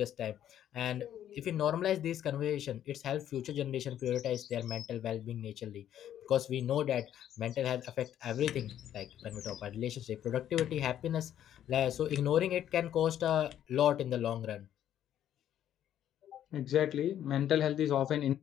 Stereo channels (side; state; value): right; quieter; 10.8 dB